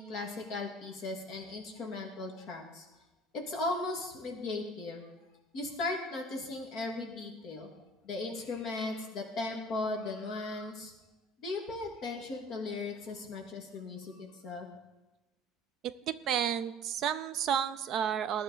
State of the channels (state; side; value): normal; both; correlation 0.46